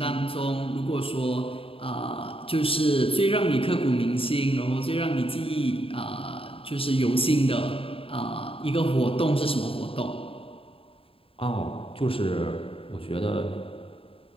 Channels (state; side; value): late; right; 0.27 ms